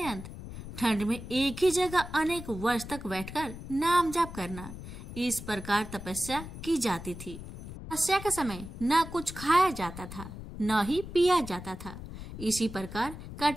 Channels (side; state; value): left; noise; rumble, 11 dB below the sound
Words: ठंड में एक ही जगह अनेक वर्ष तक बैठकर नाम जप करना, इस प्रकार तपस्या की जाती थी। तपस्या के समय न कुछ खाया जाता था न ही पिया जाता था। इसी प्रकार